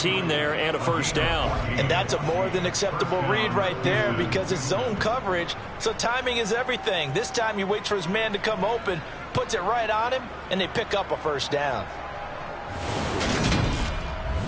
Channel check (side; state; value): both; identical; correlation 1.00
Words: there and a first down. And that's a more than acceptable read right there, because it's zone coverage, so timing is everything. This time he waits for his man to come open, puts it right on him, and they pick up a first down.